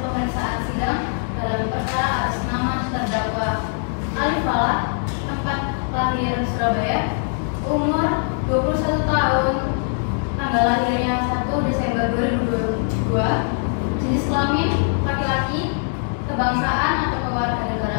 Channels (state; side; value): silent; right; 58 dB below the other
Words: pemeriksaan sidang dalam perkara atas nama terdakwa Alif Falah, tempat lahir Surabaya, umur 21 tahun, tanggal lahirnya 1 Desember 2022, jenis kelamin laki-laki, kebangsaan atau